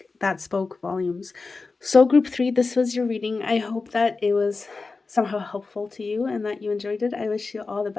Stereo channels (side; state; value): right; quieter; 4.0 dB